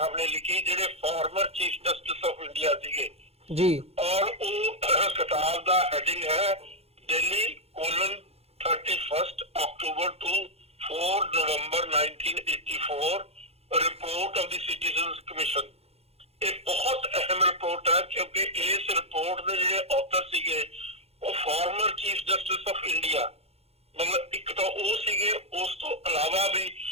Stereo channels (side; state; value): left; late; 0.29 ms